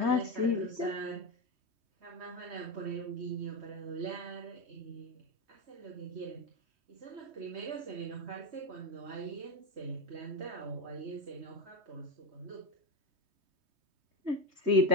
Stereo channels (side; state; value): left; late; 3.2 ms